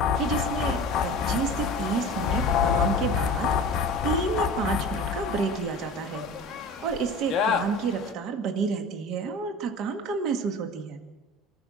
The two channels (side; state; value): both; normal; correlation 0.35